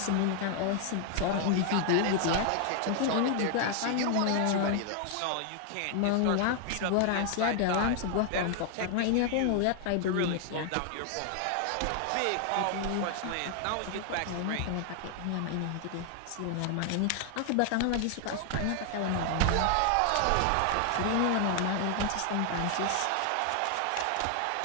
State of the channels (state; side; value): different; both; correlation 0.00